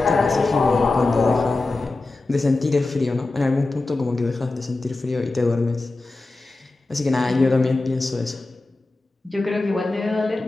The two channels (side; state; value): right; quieter; 3.2 dB